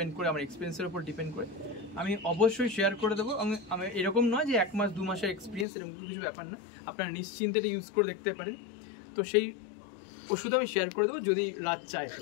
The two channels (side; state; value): right; drops out; at 5.7 s